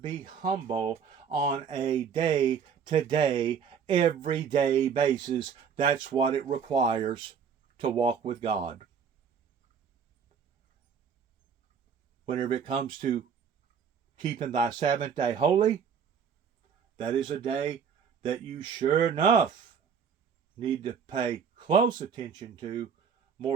humble on a day-to-day, everyday basis. That's what it requires to walk with God. Whenever it comes to keeping thy Sabbath day holy, that is a day that you sure enough need to pay close attention to,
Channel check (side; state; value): left; quieter; 6.9 dB